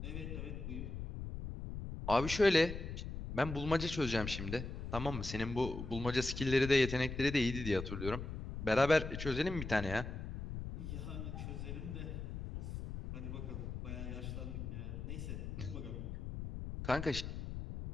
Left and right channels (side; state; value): left; noise; rumble, 6 dB below the sound